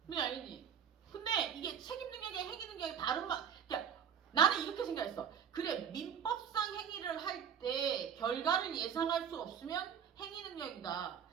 왜 알겠니? 근데 이게 책임 능력이 행위 능력이 다른 말. 그러니까 나는 이렇게 생각했어. 그래 민법상 행위를 할 때 결과를 예상할 수 없으면 행위 능력이다.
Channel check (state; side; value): quieter; left; 8.3 dB